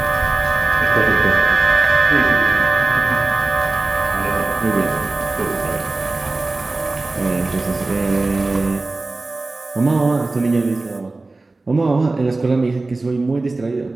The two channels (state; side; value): quieter; left; 3.3 dB